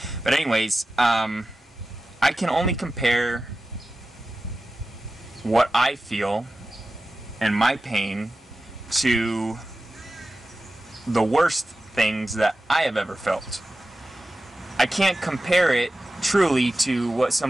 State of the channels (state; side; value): normal; both; correlation 0.94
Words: But anyways, I can only compare what I feel and my pain to the worst things that I have ever felt. I can't compare it truly to what